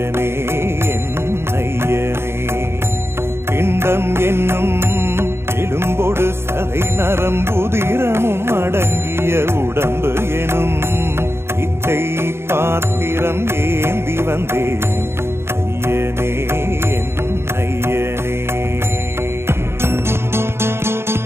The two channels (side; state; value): left; late; 0.12 ms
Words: என் ஐயனே. பிண்டம் என்னும் எலும்பொடு சதை நரம்புதிரமும் அடங்கிய உடம்பு எனும் பிச்சை பாத்திரம் ஏந்தி வந்தேன் ஐயனே என் ஐயனே.